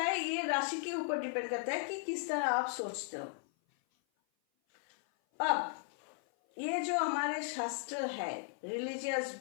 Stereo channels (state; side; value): silent; right; 54 dB below the other